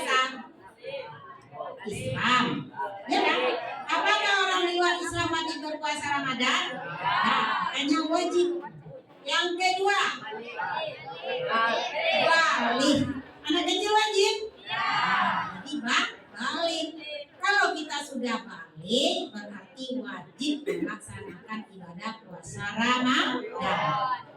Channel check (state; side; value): identical; both; correlation 1.00